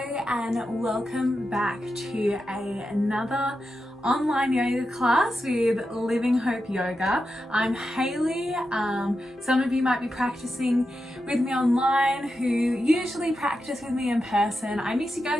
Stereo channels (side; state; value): both; normal; correlation 0.89